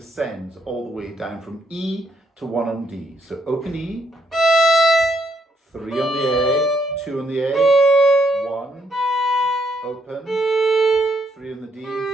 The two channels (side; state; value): both; normal; correlation 0.74